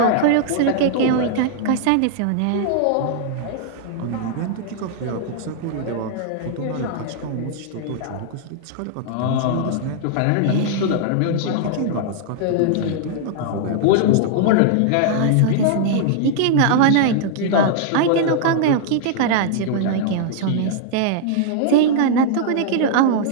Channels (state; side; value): different; both; correlation -0.01